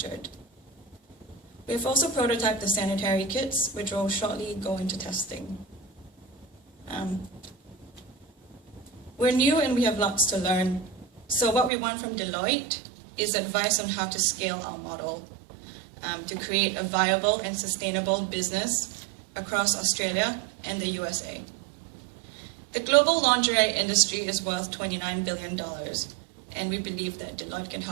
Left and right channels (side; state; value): left; drops out; at 11.7 s